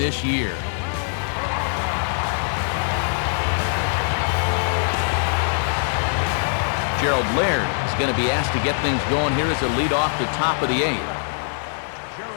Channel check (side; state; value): right; silent; 64 dB below the other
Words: year. Gerald Laird is going to be asked to get things going here as a lead off the top of the 8th.